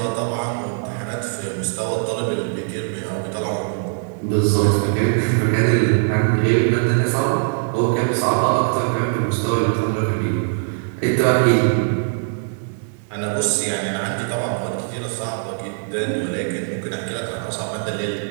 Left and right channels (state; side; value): silent; left; digital silence